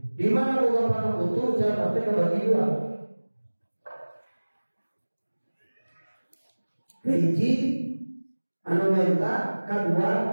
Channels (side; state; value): both; inverted; correlation -1.00